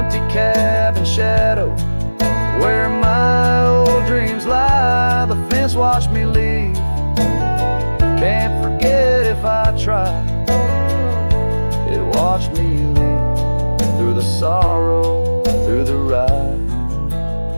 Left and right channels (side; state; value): both; inverted; correlation -1.00